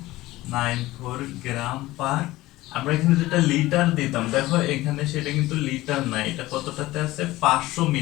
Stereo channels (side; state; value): right; quieter; 17.8 dB